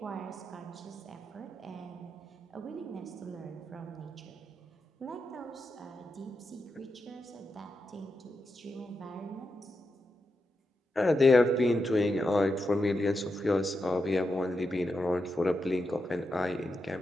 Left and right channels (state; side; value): normal; both; correlation 0.87